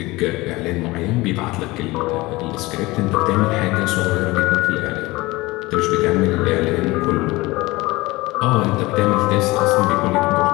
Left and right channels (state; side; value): quieter; right; 21.0 dB